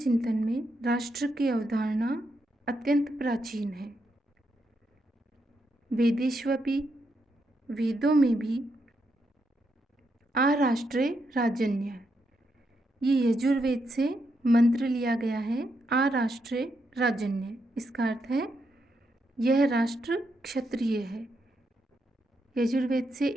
में राष्ट्र की अवधारणा अत्यंत प्राचीन है। वेदेष्वपि, वेदों में भी आराष्ट्रे राजन्य, ये यजुर्वेद से मंत्र लिया गया है। आराष्ट्रे राजन्य, इसका अर्थ है यह राष्ट्र क्षत्रिय है। यजुर्वेद से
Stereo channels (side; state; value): both; normal; correlation 0.81